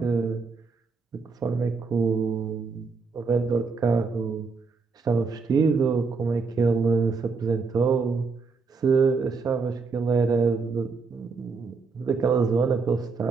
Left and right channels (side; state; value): left; quieter; 4.7 dB